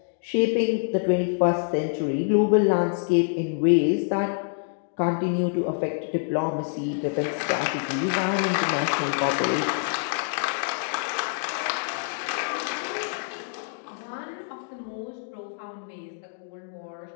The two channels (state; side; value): silent; right; digital silence